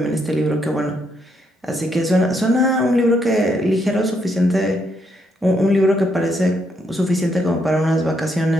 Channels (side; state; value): both; normal; correlation 0.76